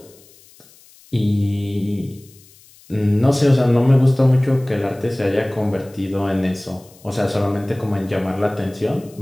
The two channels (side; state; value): left; noise; hiss, 26 dB below the sound